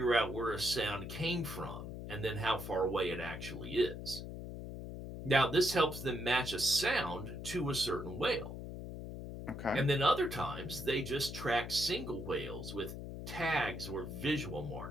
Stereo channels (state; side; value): noise; left; hum, 8 dB below the sound